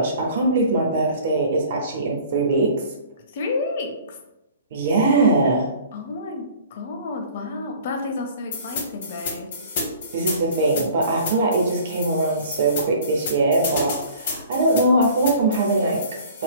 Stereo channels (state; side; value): inverted; both; correlation -0.48